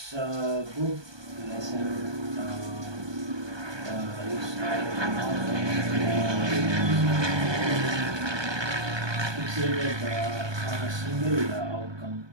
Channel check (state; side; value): late; left; 1.2 ms